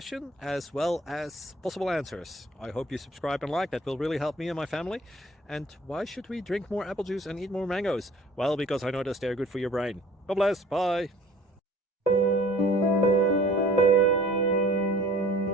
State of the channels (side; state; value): both; normal; correlation 0.50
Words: as well as possible answers. I hope you subscribe and like, that will really help me and my family. And why should we drink more apple juice and eat more mangoes? Well, because I noticed they're good for your brain. God bless, bye.